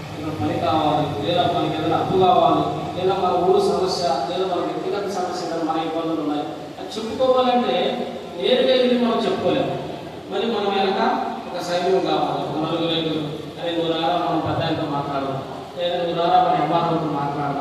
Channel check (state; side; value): identical; both; correlation 1.00